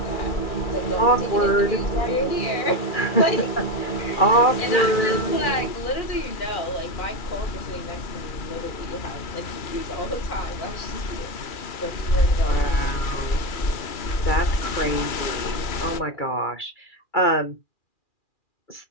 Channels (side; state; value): right; late; 2.4 ms